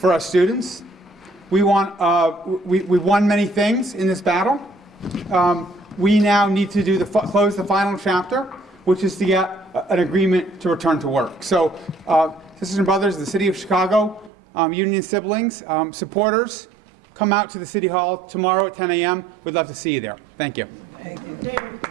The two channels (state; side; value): drops out; left; at 14.3 s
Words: our students. We want, we won many things in this battle. We now need to do close the final chapter, which is to get an agreement to return to work. So, sisters and brothers of the City of Chicago, union siblings, supporters, come out to the City Hall tomorrow at 10 a.m. We'd love to see you there. Thank you.